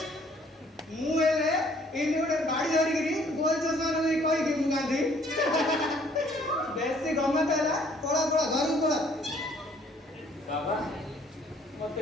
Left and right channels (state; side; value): normal; both; correlation 0.60